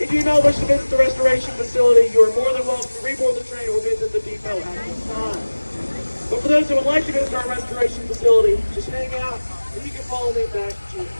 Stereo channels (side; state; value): both; inverted; correlation -1.00